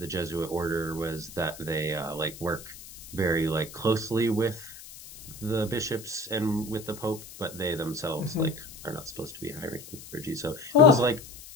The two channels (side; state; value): left; noise; hiss, 16 dB below the sound